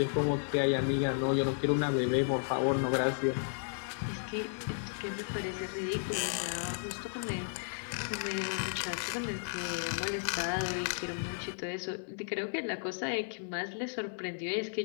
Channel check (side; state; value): right; silent; digital silence